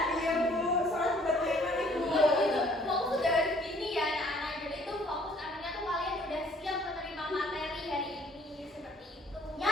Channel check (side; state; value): both; normal; correlation 0.59